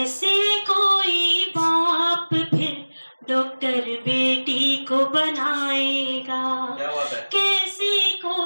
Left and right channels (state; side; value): inverted; both; correlation -1.00